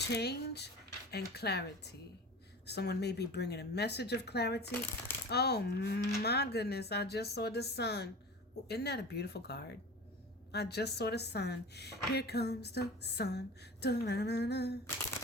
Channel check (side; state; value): both; normal; correlation 0.35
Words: and clarity. Someone may be bringing a message of clarity. Oh my goodness, I just saw the sun. Oh, isn't that a beautiful card? I just saw the sun. Here comes the sun. Da-na-na-na.